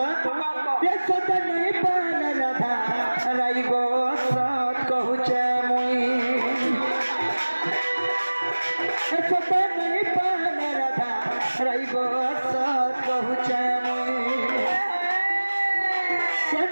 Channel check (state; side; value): inverted; both; correlation -1.00